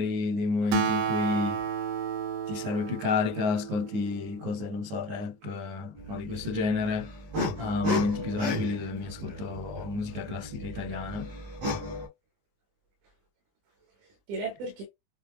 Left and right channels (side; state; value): left; late; 19 ms